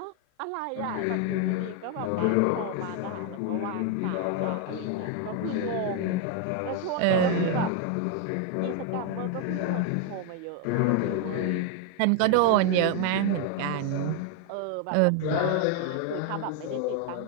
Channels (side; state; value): both; different; correlation 0.01